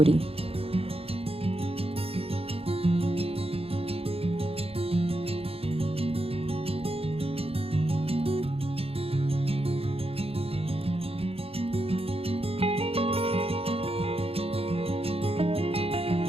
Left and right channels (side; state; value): left; late; 0.28 ms